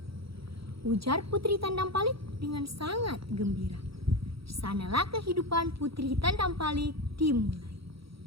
Ujar Putri Tandampali dengan sangat gembira. Di sanalah kehidupan Putri Tandampali dimulai.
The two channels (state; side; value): late; left; 0.75 ms